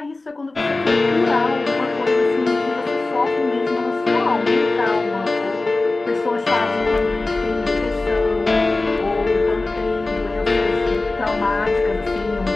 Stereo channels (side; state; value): right; quieter; 3.2 dB